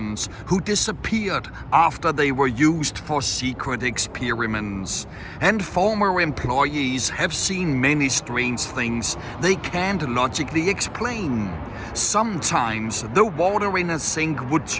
who disappeared after they were used for secret experiments. And former employees have seen many strange things they can't logically explain. Sometimes the water in a sink would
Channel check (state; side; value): identical; both; correlation 1.00